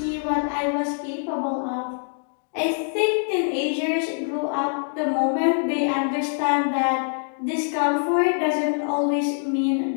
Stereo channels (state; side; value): silent; right; digital silence